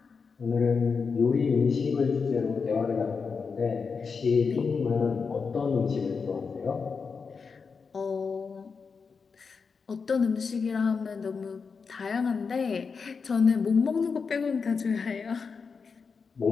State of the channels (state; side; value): quieter; right; 5.3 dB